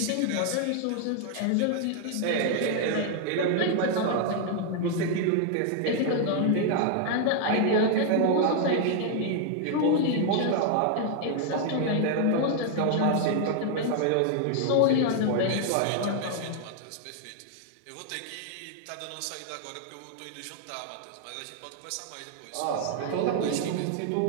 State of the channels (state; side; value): different; both; correlation 0.00